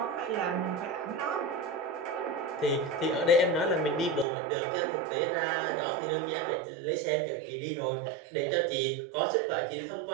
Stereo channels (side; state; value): left; drops out; at 4.2 s